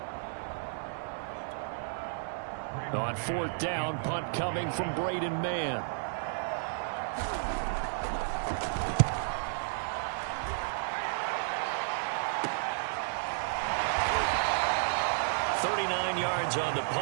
On 4th down, punt coming from Braden Mann. Yards on the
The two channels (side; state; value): left; silent; 56 dB below the other